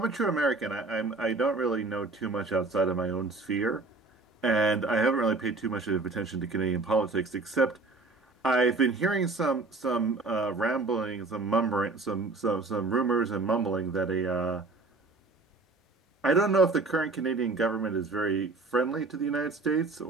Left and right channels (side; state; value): left; quieter; 3.6 dB